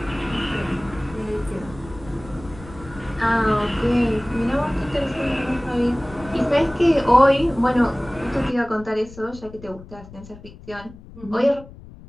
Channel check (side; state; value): left; noise; rumble, 18 dB below the sound